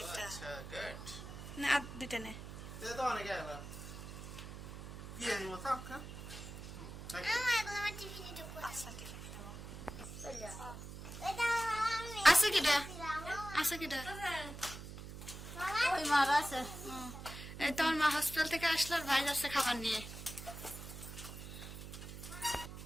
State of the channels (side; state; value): right; noise; hum, 11 dB below the sound